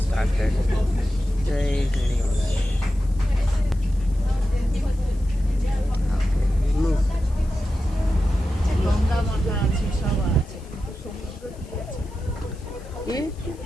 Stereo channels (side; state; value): left; noise; hiss, 27 dB below the sound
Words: গঙ্গা মাথা আছে, সব আছে, কিন্তু সমুদ্র কি আছে?